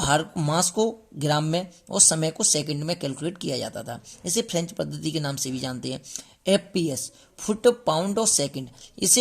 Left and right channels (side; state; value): both; identical; correlation 1.00